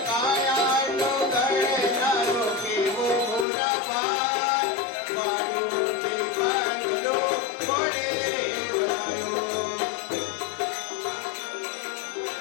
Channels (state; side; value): drops out; right; at 3.5 s